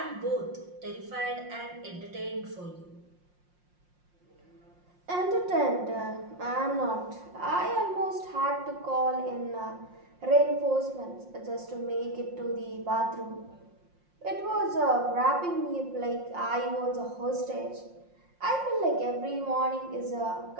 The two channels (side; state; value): left; late; 5.6 ms